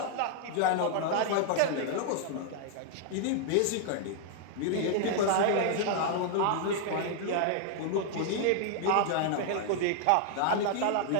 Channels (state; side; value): different; both; correlation -0.01